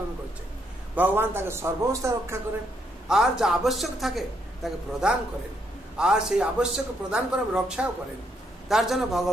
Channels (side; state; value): both; normal; correlation 0.75